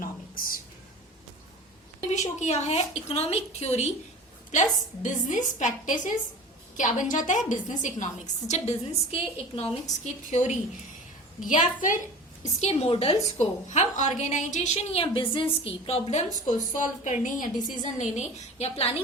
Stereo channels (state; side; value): normal; both; correlation 0.37